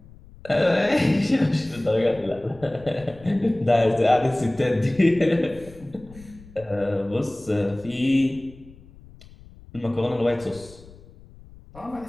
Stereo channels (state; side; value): noise; left; rumble, 21 dB below the sound